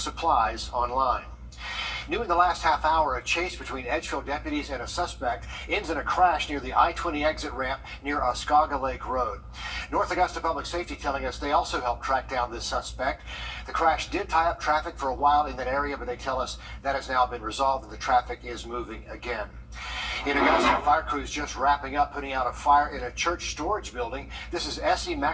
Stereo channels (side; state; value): both; identical; correlation 1.00